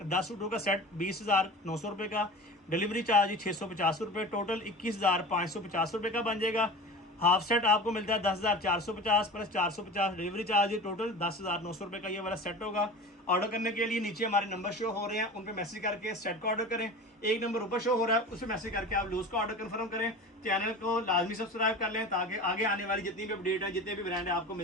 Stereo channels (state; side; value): normal; both; correlation 0.34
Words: 10 सूटों का सेट 20,900 रुपये का। डिलीवरी चार्ज 650 रुपये, टोटल 21,550 रुपये का बन जाएगा। हाफ सेट आपको मिलता है 10,450 प्लस 450 डिलीवरी चार्ज, टोटल 10,900 रुपये का ये वाला सेट होगा। ऑर्डर करने के लिए नीचे हमारे नंबर शो हो रहे हैं, उन पर मैसेज करके सेट का ऑर्डर करें। एक नंबर ऊपर शो हो रहा है, उस पर मैसेज करके आप लूज का ऑर्डर कंफर्म करें। चैनल को लाजमी सब्सक्राइब कर लें ताकि आगे आने वाली जितनी भी अपडेट है, जितने भी ब्रांड है आपको